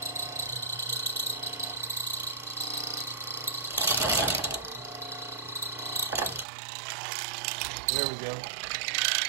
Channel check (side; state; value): left; drops out; at 6.5 s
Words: There we go.